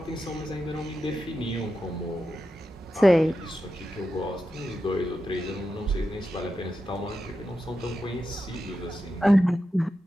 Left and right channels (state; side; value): normal; both; correlation 0.89